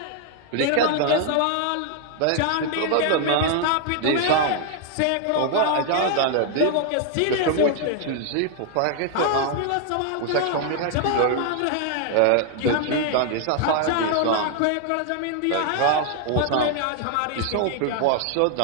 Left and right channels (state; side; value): different; both; correlation 0.00